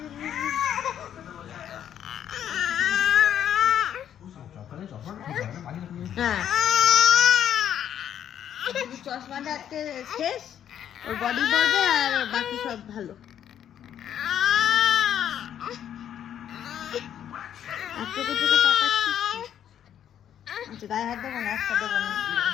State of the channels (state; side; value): quieter; right; 9.9 dB